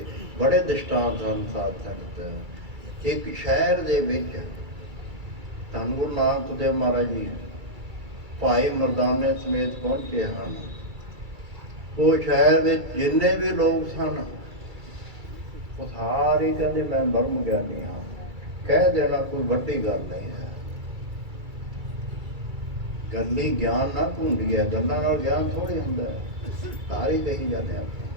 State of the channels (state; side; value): late; left; 2.3 ms